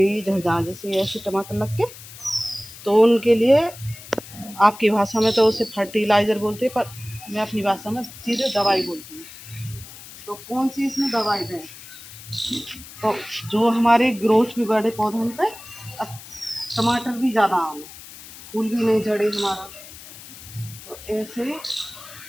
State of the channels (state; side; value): noise; left; hiss, 16 dB below the sound